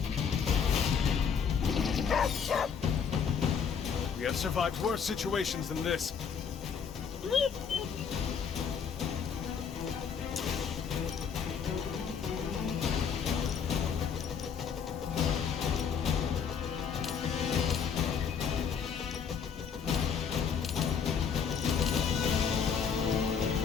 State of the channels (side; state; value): right; quieter; 6.8 dB